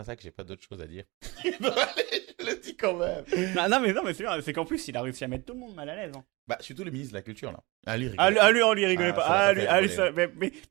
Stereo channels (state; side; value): quieter; left; 24.5 dB